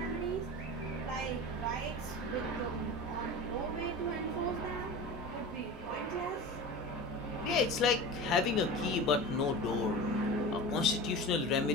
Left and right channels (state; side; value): normal; both; correlation 0.31